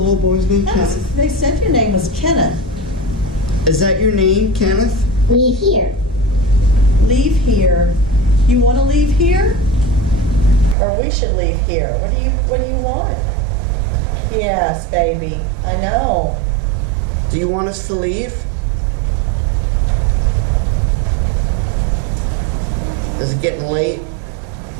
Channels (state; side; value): drops out; left; at 10.8 s